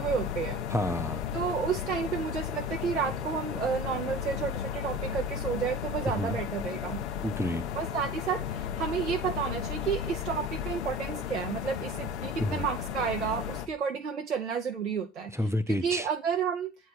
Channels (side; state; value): both; normal; correlation 0.39